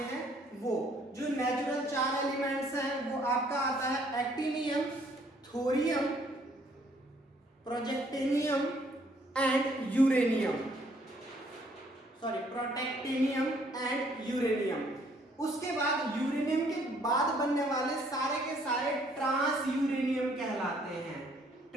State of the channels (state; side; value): normal; both; correlation 0.64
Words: हैं वो। जो नेचुरल 4 एलिमेंट्स हैं वो आपका आता है actinium, thorium, protactinium and uranium, protactinium and uranium. उसके बाद यूरेनियम के बाद बनने वाले सारे के सारे ट्रांस यूरेनियम कहलाते हैं।